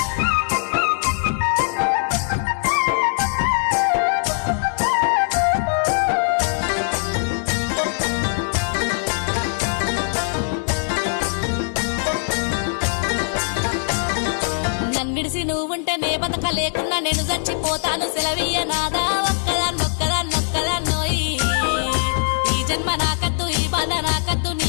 నన్నిడిసి నువ్వుంటే నే బతక లేకున్నా నేను చచ్చిపోతాను సెలవీయ నాదా ఒక్కదాన్నొక్కదాన్నోయి ఈ జన్మ నాకద్దు ఈ బాధ నాకద్దు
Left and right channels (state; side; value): silent; right; 65 dB below the other